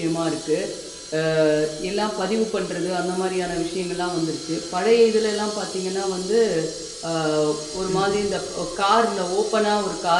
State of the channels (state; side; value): identical; both; correlation 1.00